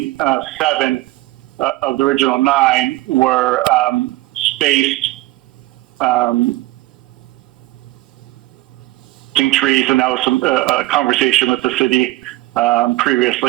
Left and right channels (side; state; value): left; quieter; 18.2 dB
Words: 7 of the original 9 were spaced trees, and that was some conversation with the city